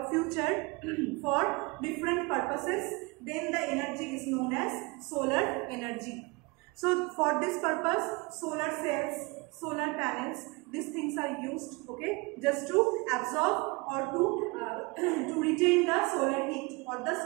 future for different purposes, then the energy is known as solar energy. So for this purpose, solar cells, solar panels, these things are used, okay, just to absorb or to retain the solar heat or the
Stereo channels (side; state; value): left; quieter; 26.2 dB